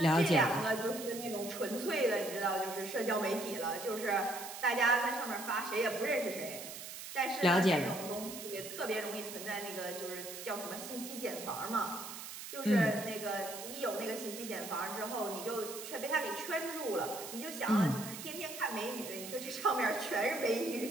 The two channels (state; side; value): noise; right; hiss, 10 dB below the sound